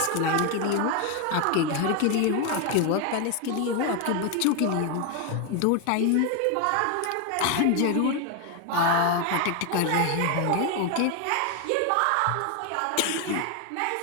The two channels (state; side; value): different; both; correlation 0.01